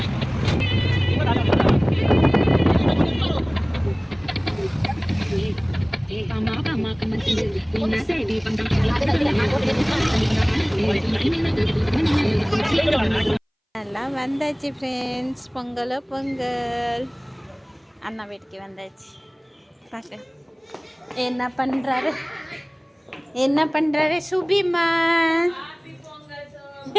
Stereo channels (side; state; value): both; identical; correlation 1.00